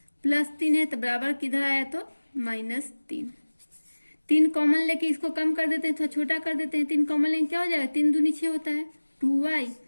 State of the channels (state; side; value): inverted; both; correlation -1.00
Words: प्लस 3 है तो बराबर किधर आया तो -3। 3 कॉमन लेके इसको कम कर देते हैं, थोड़ा छोटा कर देते हैं। 3 कॉमन लेके क्या हो जाएगा 3 दूनी 6 होता है 2y